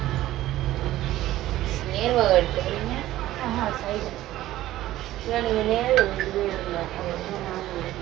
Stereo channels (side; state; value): left; quieter; 14.9 dB